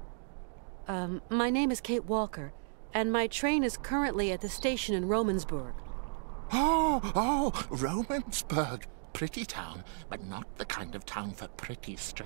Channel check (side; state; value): left; silent; digital silence